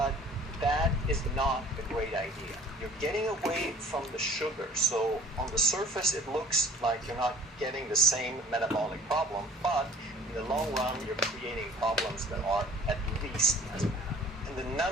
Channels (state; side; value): normal; both; correlation 0.49